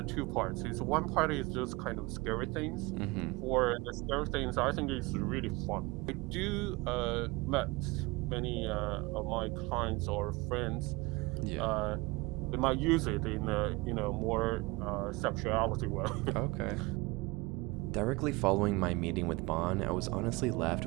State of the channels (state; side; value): quieter; left; 23.7 dB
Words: two parts. It's one part is just kind of scary things. For the scary things, I think it's really fun. I do met many of my clients or friends. They might use it in a more sexuality way. Okay. Directly following my meeting with Bon, I was honestly left